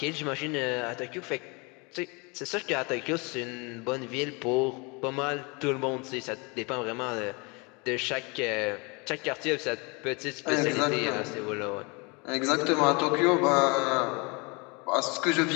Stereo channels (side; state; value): right; quieter; 29.4 dB